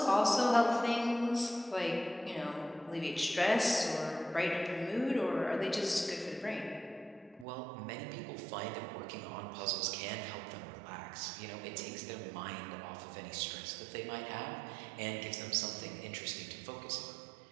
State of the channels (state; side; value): drops out; left; at 7.5 s